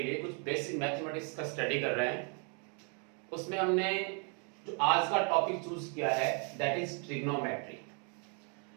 लिए कुछ बेसिक मैथमेटिक्स का स्टडी कर रहे हैं। उसमें हमने जो आज का टॉपिक चूज किया है दैट इज ट्रिग्नोमेट्री।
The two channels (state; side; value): quieter; left; 38.3 dB